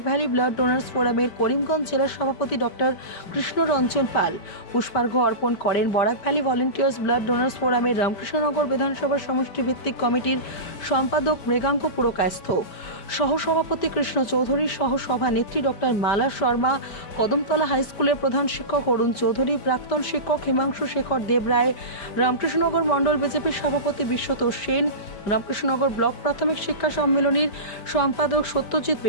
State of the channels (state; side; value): late; right; 5.1 ms